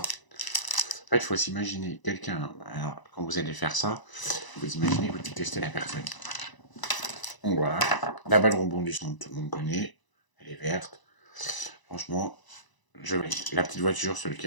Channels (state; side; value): late; right; 1.0 ms